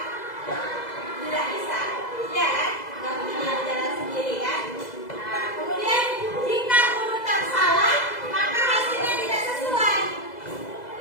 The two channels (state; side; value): late; right; 2.0 ms